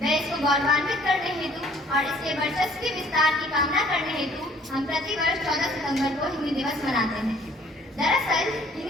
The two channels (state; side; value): normal; both; correlation 0.57